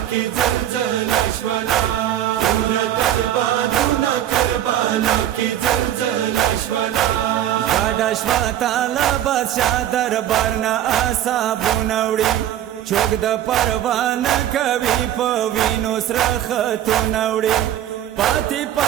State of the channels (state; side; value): quieter; left; 11.7 dB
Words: کی زلزلہ شولا उरत البادونا کربلا کی زلزلہ شولا گاڑا شوا تالا بادشاہ دربارنا آسابو نوڑی چوک دا پروانه کوي په وینو سره خطو نوړي پاتې